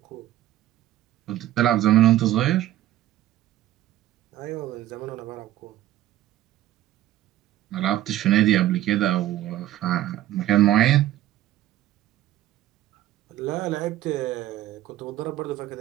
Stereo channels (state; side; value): quieter; left; 13.9 dB